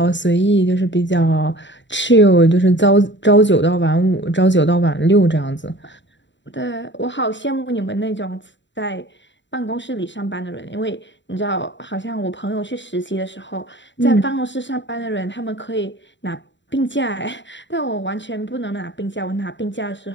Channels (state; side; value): late; right; 0.53 ms